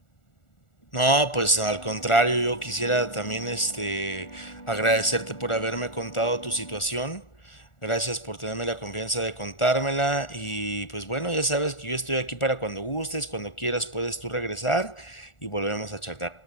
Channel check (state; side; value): late; right; 1.4 ms